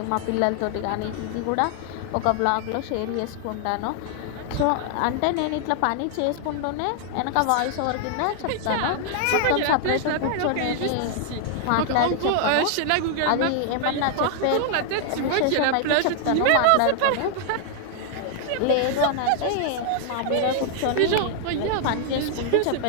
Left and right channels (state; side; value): different; both; correlation 0.00